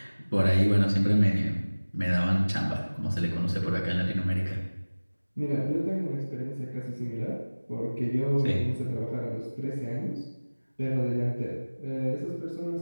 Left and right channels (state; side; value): inverted; both; correlation -1.00